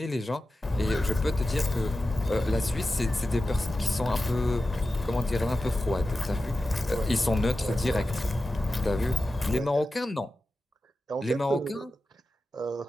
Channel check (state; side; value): normal; both; correlation 0.93